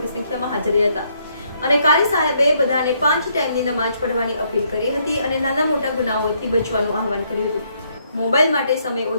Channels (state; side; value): inverted; both; correlation -0.72